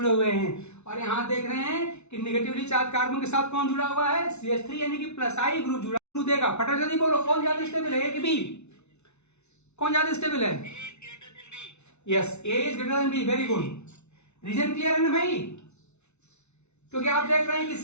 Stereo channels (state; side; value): late; right; 0.81 ms